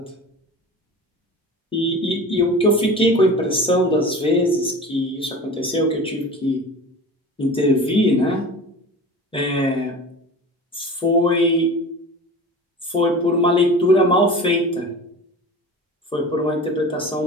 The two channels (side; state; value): both; normal; correlation 0.36